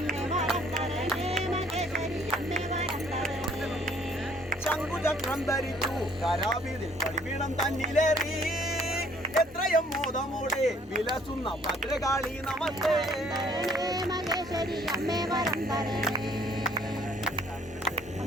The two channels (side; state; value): both; normal; correlation 0.61